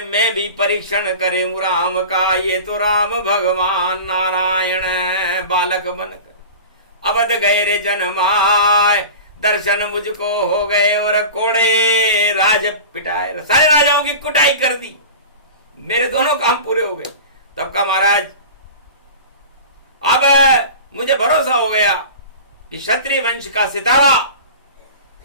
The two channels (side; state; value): both; inverted; correlation -0.35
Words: मैं भी परीक्षण करूं राम का, ये तो राम भगवान नारायण बालक बनकर अवध गए रे जन्माए। दर्शन मुझको हो गए और कोड़े राज पिटाए, सारे राजाओं की कुटाई कर दी, मेरे दोनों काम पूरे हो गए। तब का महाराज अब मुझे भरोसा हो गया कि क्षत्रिय वंश का सितारा